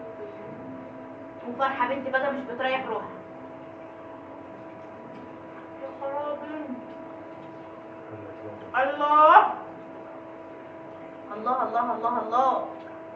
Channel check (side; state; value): both; identical; correlation 1.00